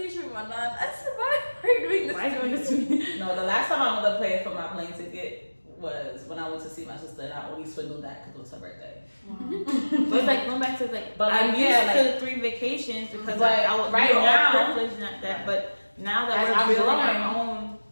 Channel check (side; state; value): both; inverted; correlation -1.00